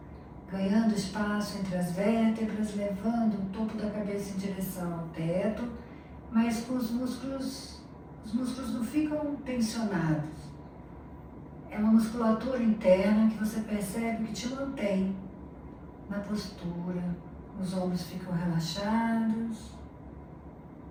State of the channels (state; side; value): identical; both; correlation 1.00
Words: Ganhando espaço entre as vértebras, levando o topo da cabeça em direção ao teto, mas com os músculos não ficam tensionados. É uma musculatura interna que você percebe que te mantém na postura. Os ombros ficam relaxados.